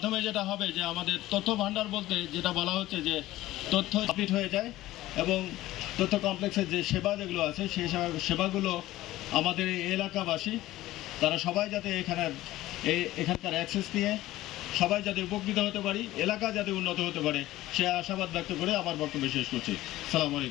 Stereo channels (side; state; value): right; quieter; 16.2 dB